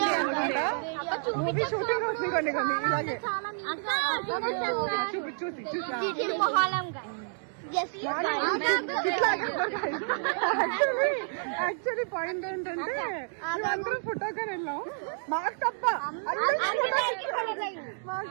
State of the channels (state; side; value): silent; left; digital silence